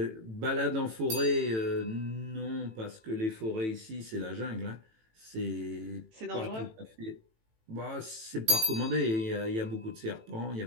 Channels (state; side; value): late; left; 18 ms